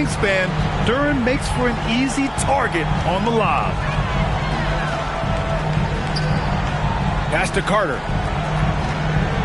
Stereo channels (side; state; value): both; identical; correlation 1.00